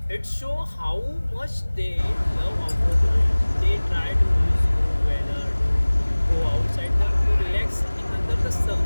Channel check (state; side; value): inverted; both; correlation -1.00